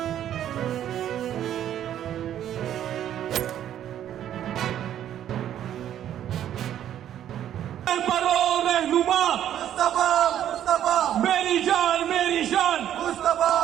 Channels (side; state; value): left; quieter; 10.9 dB